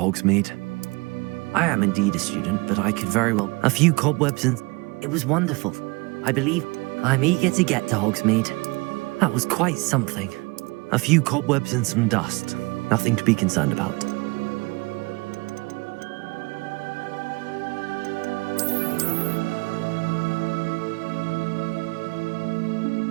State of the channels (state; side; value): quieter; left; 26.1 dB